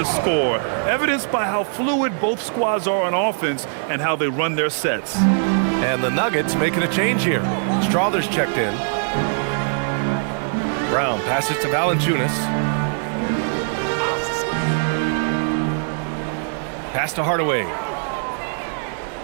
score, evidenced by how fluid both squads are on offense and how they run their sets. And the Nuggets making a change here. Strawther's checked in. Brown passes to Valanciunas. Pass to Hardaway.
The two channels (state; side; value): silent; left; digital silence